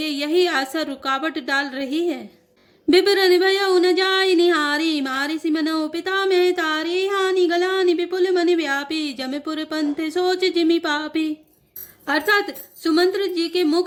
यही आशा रुकावट डाल रही है। बिबरन भयउ न जाय निहारी, मारी सिमनो पिता में तारी, हानि गलानि विपुल मन व्यापी, जमपुर पंथ सोच जिमि पापी। अर्थात सुमंत्र जी के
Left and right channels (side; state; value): both; identical; correlation 1.00